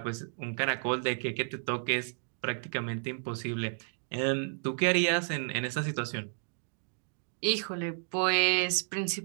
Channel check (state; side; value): silent; left; digital silence